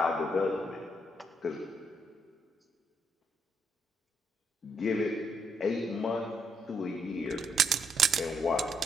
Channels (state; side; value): normal; both; correlation 0.75